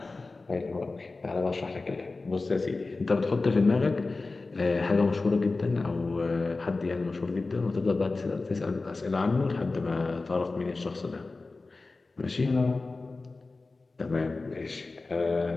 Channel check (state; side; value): quieter; right; 3.6 dB